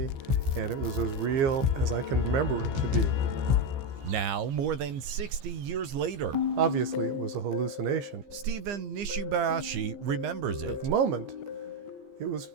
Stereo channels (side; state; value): left; late; 15 ms